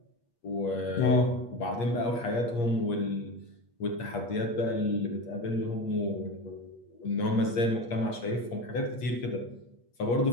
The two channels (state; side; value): late; right; 8.5 ms